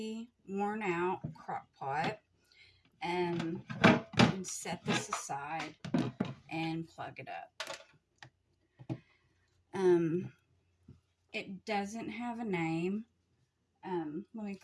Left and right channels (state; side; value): identical; both; correlation 1.00